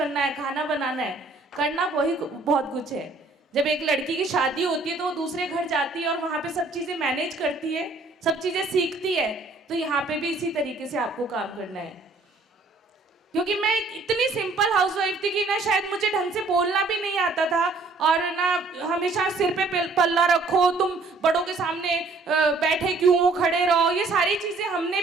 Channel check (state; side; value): quieter; left; 3.5 dB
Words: है, खाना बनाना है, करना वही बहुत कुछ है। जब एक लड़की की शादी होती है तो वो दूसरे घर जाती है और वहां पे सब चीजें मैनेज करती है, सब चीजें सीखती है। तो यहाँ पे भी इसी तरीके से आपको काम करना है। क्योंकि मैं इतनी सिंपल हाउसवाइफ थी कि ना शायद मुझे ढंग से बोलना भी नहीं आता था, और ना हमेशा सिर पे पल्ला रखो, तुम बड़ों के सामने बैठे क्यों हो, खड़े रहो, ये सारी चीजें हमने